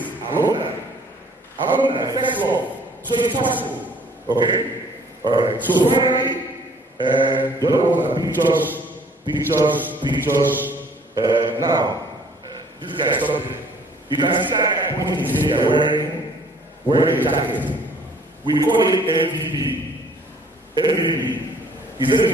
Alumni. Alumni, first love. So it's possible. Okay? Alright. So finally, the other ones are pictures. Now, this guy is something. You can see that guy pointing his finger wearing a jacket. We call it MVP. MVP. He's an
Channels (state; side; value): normal; both; correlation 0.57